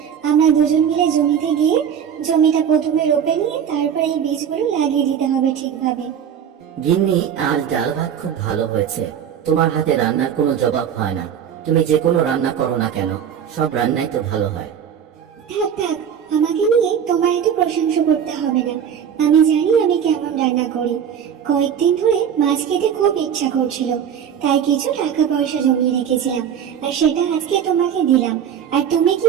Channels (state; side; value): quieter; left; 8.5 dB